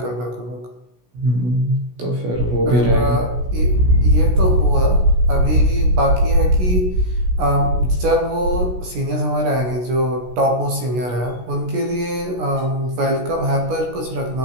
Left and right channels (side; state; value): left; late; 16 ms